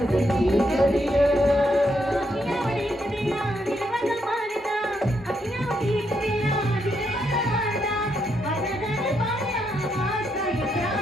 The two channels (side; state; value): both; normal; correlation 0.78